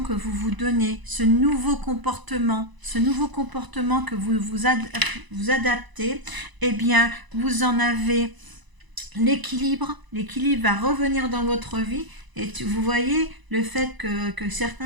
que vous vous donnez, ce nouveau comportement que vous adaptez, eh bien, vous en avez l'équilibre va revenir dans votre vie. Et vous voyez le fait que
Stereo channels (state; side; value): late; left; 1.0 ms